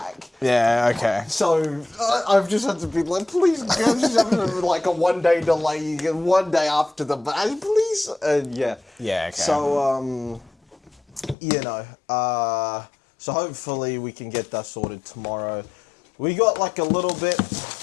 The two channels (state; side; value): drops out; right; at 11.4 s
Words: Yeah, okay. So I've just had to be like, please, guys, just have like a 1 day delay. You get 1 day after the please. Yeah. Yeah, okay. So you know, so hopefully we can get that sorted tomorrow. We got like a little bit